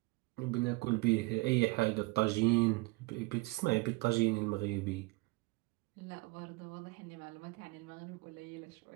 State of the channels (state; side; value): quieter; left; 24.0 dB